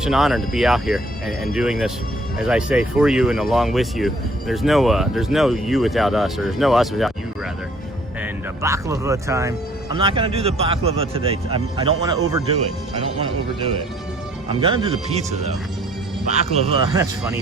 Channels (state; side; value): normal; both; correlation 0.59